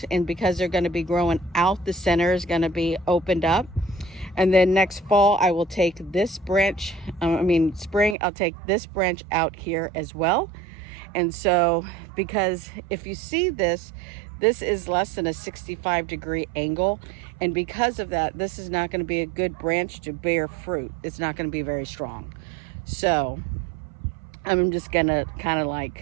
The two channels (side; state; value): left; drops out; at 8.2 s